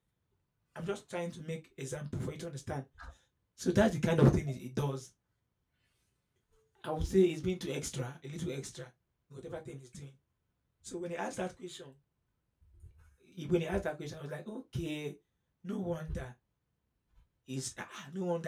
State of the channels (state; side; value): identical; both; correlation 1.00